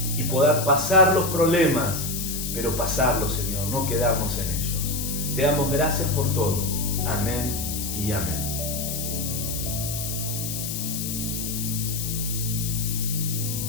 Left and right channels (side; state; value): left; noise; hiss, 4 dB below the sound